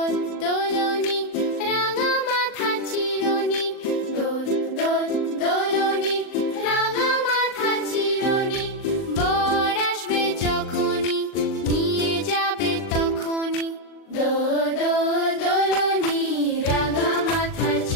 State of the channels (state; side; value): late; right; 39 ms